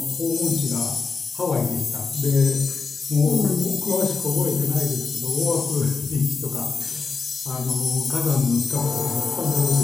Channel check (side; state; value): right; quieter; 4.7 dB